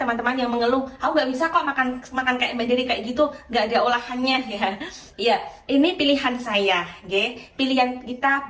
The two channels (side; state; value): both; identical; correlation 1.00